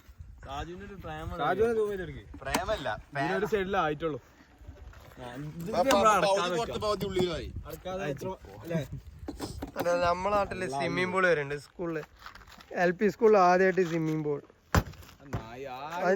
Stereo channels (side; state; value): both; identical; correlation 1.00